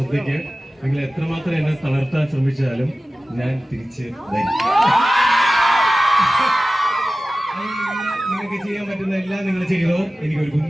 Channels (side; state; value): both; normal; correlation 0.96